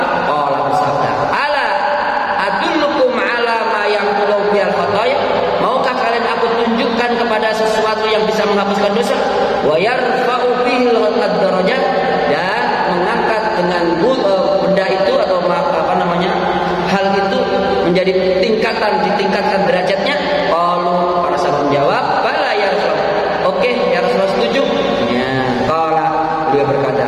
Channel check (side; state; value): both; identical; correlation 1.00